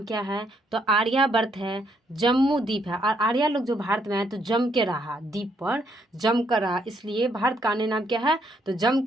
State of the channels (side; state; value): both; normal; correlation 0.72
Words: क्या है, तो आर्यावर्त है। जम्मू द्वीप है और आर्या लोग जो भारत में आए तो जम के रहा, द्वीप पर जम कर रहा, इसलिए भारत का अन्य नाम क्या है, तो जम